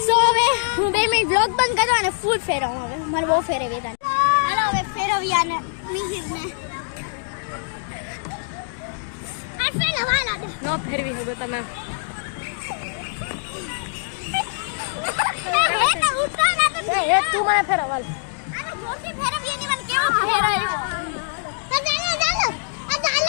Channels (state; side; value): silent; right; digital silence